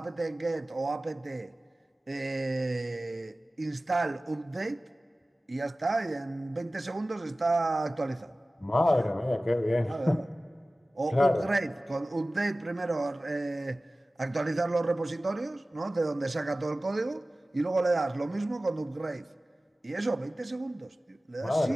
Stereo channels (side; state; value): both; normal; correlation 0.97